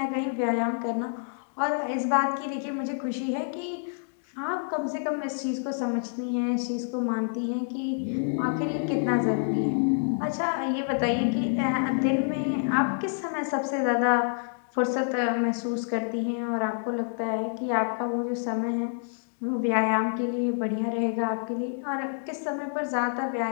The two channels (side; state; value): right; silent; digital silence